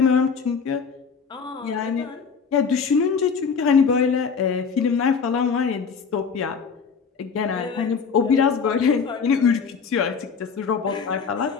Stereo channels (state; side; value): quieter; right; 5.8 dB